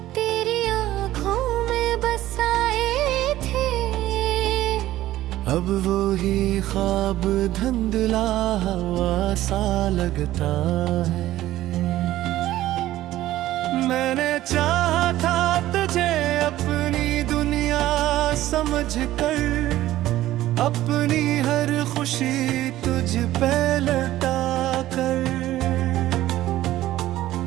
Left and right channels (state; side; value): quieter; left; 14.8 dB